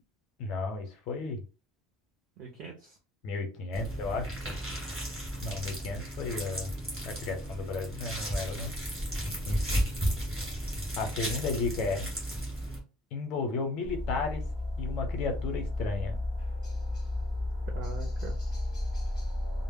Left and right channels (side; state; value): both; normal; correlation 0.61